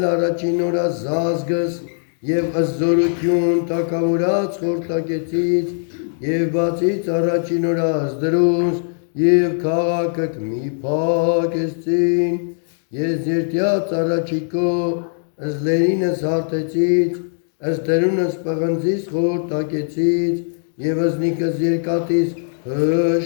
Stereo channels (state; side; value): silent; right; digital silence